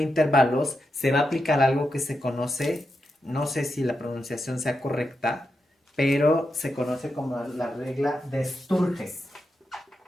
intervalos, se va a aplicar algo que se conoce no sé si la pronunciación sea correcta, pero se conoce como la regla de Sturges.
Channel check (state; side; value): normal; both; correlation 0.86